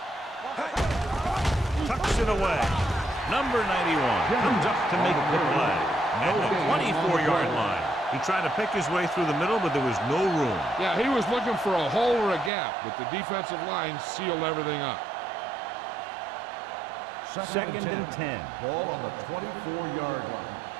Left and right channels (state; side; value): drops out; left; at 12.5 s